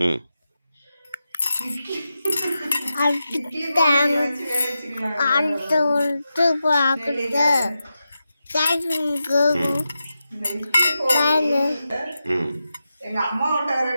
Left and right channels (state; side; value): inverted; both; correlation -0.90